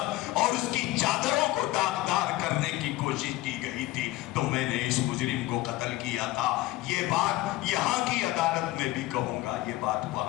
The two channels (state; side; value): quieter; right; 17.3 dB